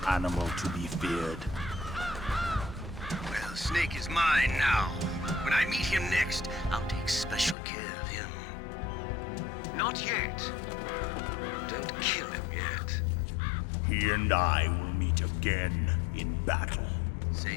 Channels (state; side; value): drops out; right; at 7.6 s